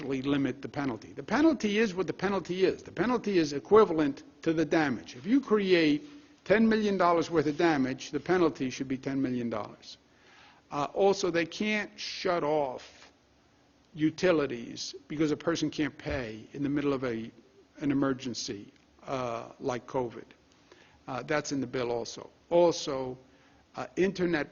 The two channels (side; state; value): both; identical; correlation 1.00